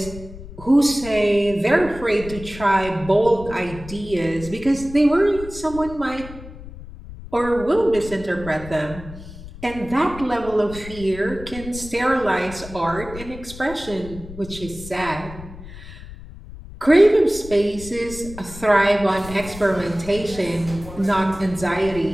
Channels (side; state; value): left; noise; rumble, 14 dB below the sound